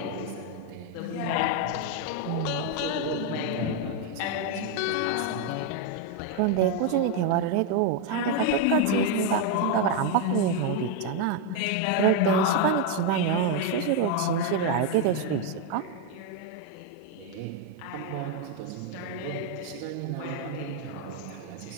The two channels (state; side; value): different; both; correlation 0.01